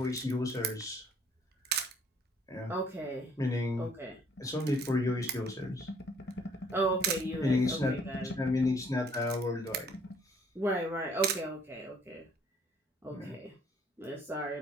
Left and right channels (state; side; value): normal; both; correlation 0.61